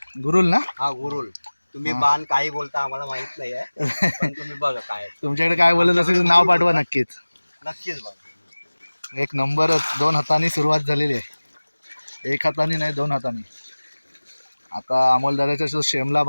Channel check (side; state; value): both; inverted; correlation -1.00